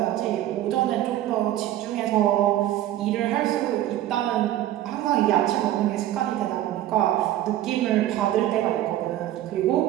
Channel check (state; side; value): quieter; left; 13.4 dB